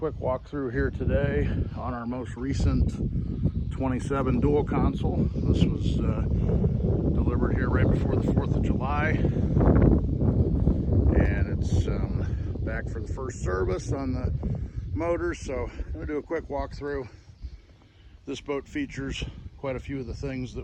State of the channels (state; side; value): identical; both; correlation 1.00